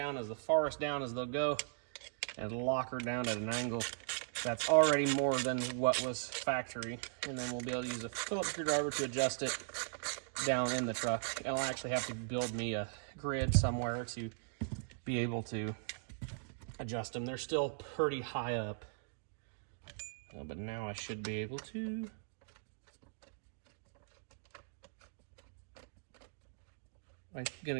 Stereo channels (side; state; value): left; silent; digital silence